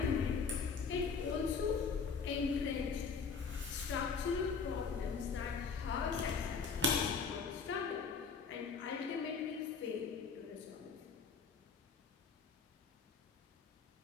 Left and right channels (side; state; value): right; quieter; 5.5 dB